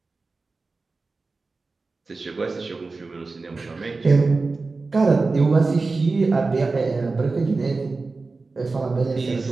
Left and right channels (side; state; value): left; quieter; 3.8 dB